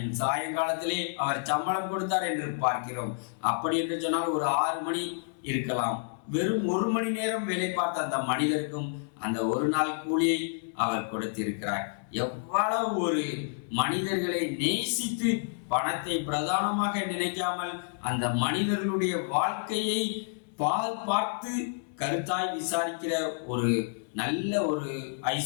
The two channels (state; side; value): silent; right; digital silence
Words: சாயங்காலத்திலே அவர் சம்பளம் கொடுத்தார் என்று பார்க்கிறோம். அப்படி என்று சொன்னால் ஒரு 6 மணி இருக்கலாம். வெறும் 1 மணி நேரம் வேலை பார்த்த அந்த மனிதருக்கும் அந்த ஒரு நாள் கூலியை அவர் கொடுத்திருக்கிறார். எவ்வளவு ஒரு மனிதர்களை நேசித்து பணத்தை பிரதானமாக நினைக்காமல் அந்த மனிதர்களுடைய வாழ்க்கையை பார்த்து கருத்தாய் விசாரிக்கிற ஒரு நல்ல ஒரு